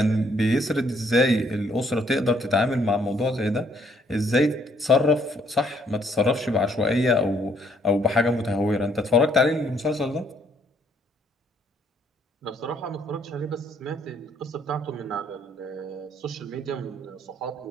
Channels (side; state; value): both; normal; correlation 0.67